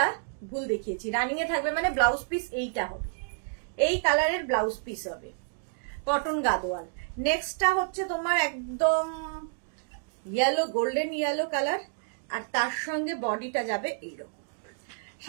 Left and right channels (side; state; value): left; silent; digital silence